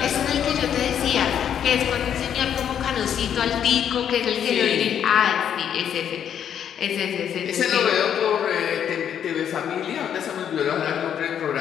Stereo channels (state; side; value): quieter; right; 9.0 dB